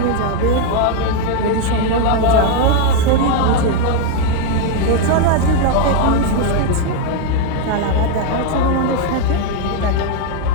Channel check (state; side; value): different; both; correlation 0.01